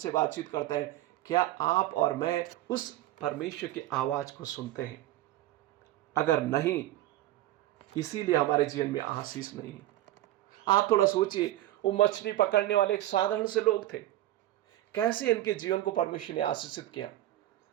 बातचीत करते हैं। क्या आप और मैं उस परमेश्वर की आवाज को सुनते हैं? अगर नहीं, इसीलिए हमारे जीवन में आशीष नहीं है। आप थोड़ा सोचिए, वो मछली पकड़ने वाले एक साधारण से लोग थे, कैसे इनके जीवन को परमेश्वर ने आशीषित किया।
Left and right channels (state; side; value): quieter; left; 14.8 dB